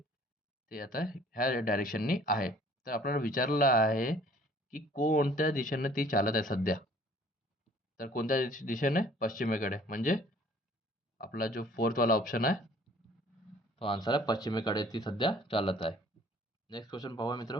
ते आता ह्या डायरेक्शननी आहे. तर आपल्याला विचारलं आहे की कोणत्या दिशेने ती चालत आहे सध्या? तर कोणत्या दिशेने? पश्चिमेकडे. म्हणजे आपला जो फोर्थवाला ऑप्शन आहे तो आन्सर आहे पश्चिमेकडे ती सध्या चालत आहे. नेक्स्ट क्वेश्चन पाहूया मित्र.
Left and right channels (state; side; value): normal; both; correlation 0.55